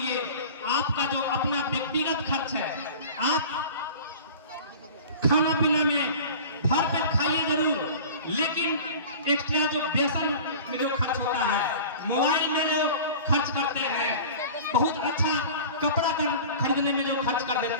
आपका जो अपना व्यक्तिगत खर्च है, आप खाना पीना में भर पेट खाइए जरूर, लेकिन एक्स्ट्रा जो बेसन में जो खर्च होता है, मोबाइल में जो खर्च करते हैं, बहुत अच्छा कपड़ा खरीदने में जो खर्च कर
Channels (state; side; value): inverted; both; correlation -0.39